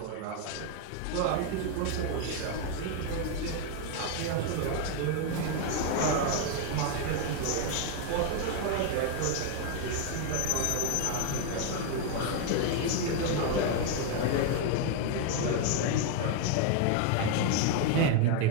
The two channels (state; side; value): different; both; correlation 0.01